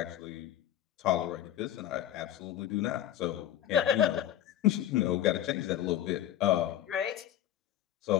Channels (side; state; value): right; quieter; 11.7 dB